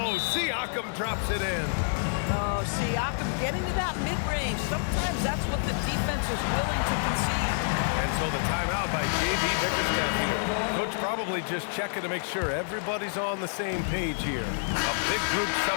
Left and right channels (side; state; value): right; silent; digital silence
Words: Siakam drops it in. Oh, Siakam getting to that mid-range. Sometimes that's what the defense is willing to concede. And so the timeout by J.B. Bickerstaff here. Coach probably just checking to make sure everybody's on the same page here. A big group